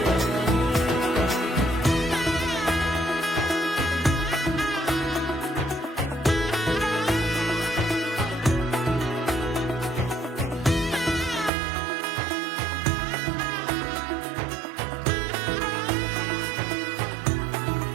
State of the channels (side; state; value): left; drops out; at 11.5 s